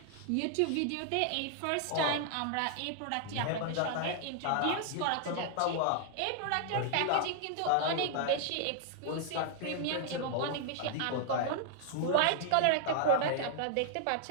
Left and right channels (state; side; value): different; both; correlation -0.01